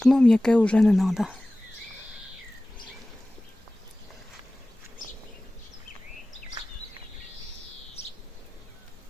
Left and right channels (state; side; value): normal; both; correlation 0.97